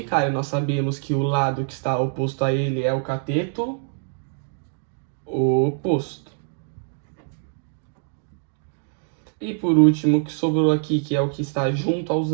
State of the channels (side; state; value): left; silent; 62 dB below the other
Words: Nós sabemos que o lado que está oposto a ele é o cateto oposto. E por último, o que sobrou aqui, que é o que está junto aos